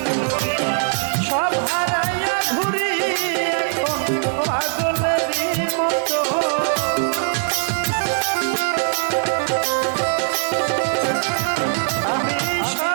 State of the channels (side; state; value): left; silent; 65 dB below the other